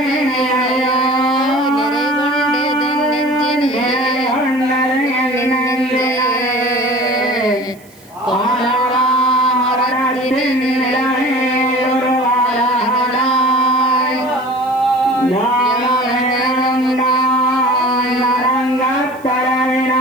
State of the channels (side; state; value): right; noise; hiss, 27 dB below the sound